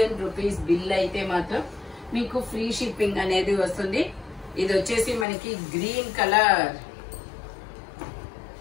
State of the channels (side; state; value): right; drops out; at 5.2 s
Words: rupees bill అయితే మాత్రం మీకు ఫ్రీ షిప్పింగ్ అనేది వస్తుంది. ఇది వచ్చేసి మనకి గ్రీన్ కలర్.